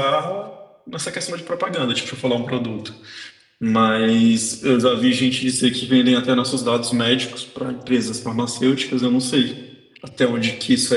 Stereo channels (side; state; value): both; identical; correlation 1.00